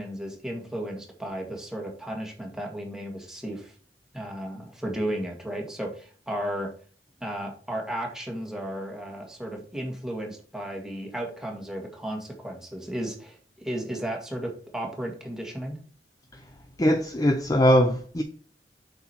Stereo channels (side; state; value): both; normal; correlation 0.76